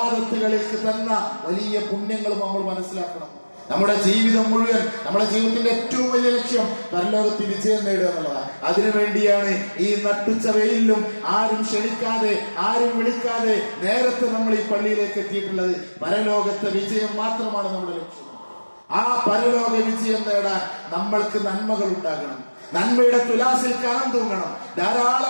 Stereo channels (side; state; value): both; inverted; correlation -1.00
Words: തന്ന വലിയ പുണ്യങ്ങളും നമ്മൾ മനസ്സിലാക്കണം. നമ്മുടെ ജീവിതം മുഴുവൻ, നമ്മുടെ ജീവിതത്തിന്റെ ഏറ്റവും വലിയ ലക്ഷ്യം പരലോകത്തിൽ വിജയം നേടുക എന്നുള്ളതാണ്. അതിനുവേണ്ടിയാണ് ഈ നട്ടുച്ച വെയിലും ആരും ക്ഷണിക്കാതെ ആരും വിളിക്കാതെ നേരത്തെ നമ്മൾ ഈ പള്ളിയിലേക്ക് എത്തിയിട്ടുള്ളത്. പരലോകത്തെ വിജയം മാത്രമാണ് നമ്മുടെ ലക്ഷ്യം. ആ പരലോക വിജയം നേടാൻ നമ്മൾക്ക് നന്മകൾ ഉണ്ടാകണം. നന്മയുടെ തുലാസിൽ കനം തൂങ്ങണം.